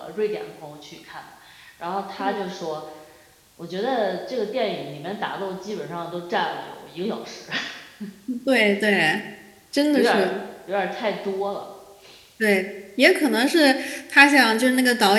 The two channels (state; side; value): identical; both; correlation 1.00